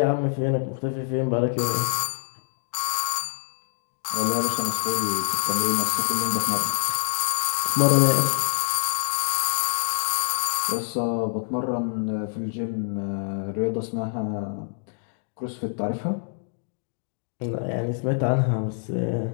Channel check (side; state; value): right; silent; digital silence